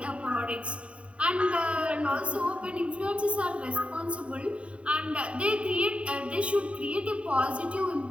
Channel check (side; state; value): left; late; 0.062 ms